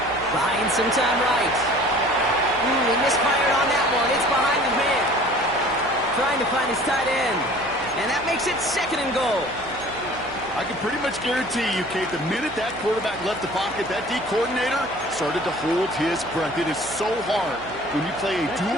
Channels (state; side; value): noise; right; hum, 20 dB below the sound